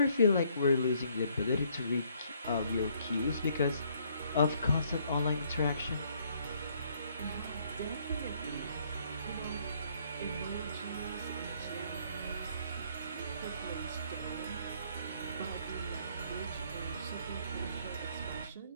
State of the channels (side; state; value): both; inverted; correlation -0.66